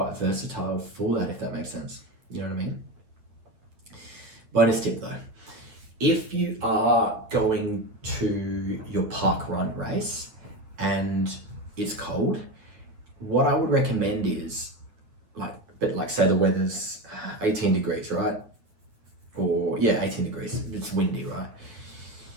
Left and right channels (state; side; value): late; left; 9.0 ms